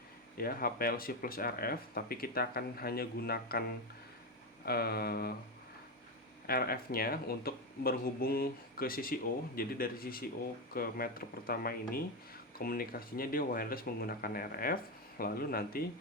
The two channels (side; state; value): both; normal; correlation 0.11